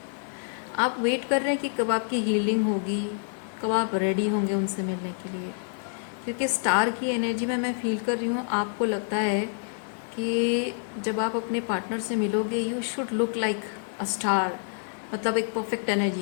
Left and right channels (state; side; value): silent; right; 55 dB below the other